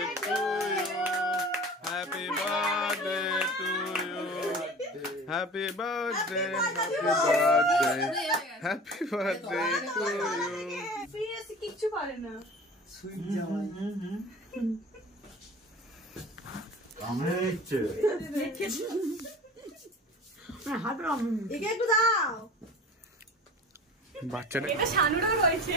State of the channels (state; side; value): normal; both; correlation 0.39